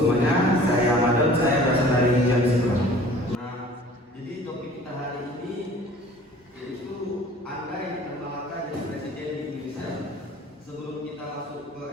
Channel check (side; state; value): both; normal; correlation 0.48